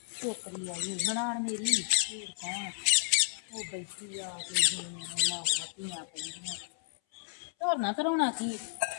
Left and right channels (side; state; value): right; silent; 56 dB below the other